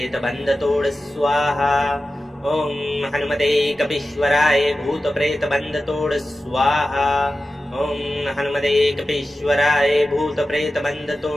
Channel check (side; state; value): both; normal; correlation 0.94